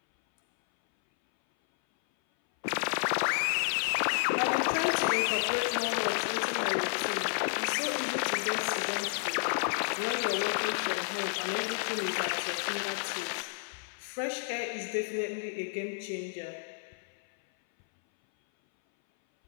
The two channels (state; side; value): silent; right; 57 dB below the other